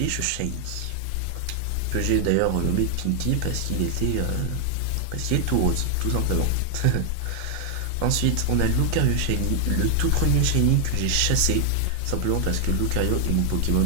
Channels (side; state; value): both; different; correlation 0.00